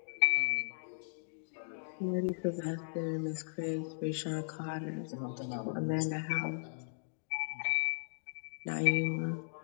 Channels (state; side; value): silent; right; digital silence